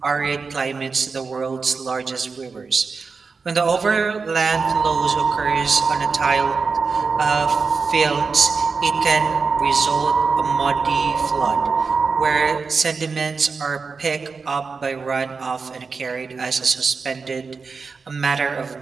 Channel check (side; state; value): left; quieter; 4.8 dB